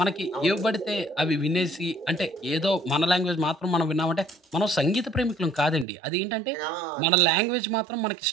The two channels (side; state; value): left; drops out; at 5.9 s